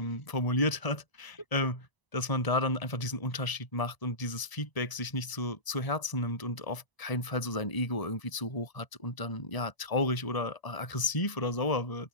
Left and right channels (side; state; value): right; late; 1.0 ms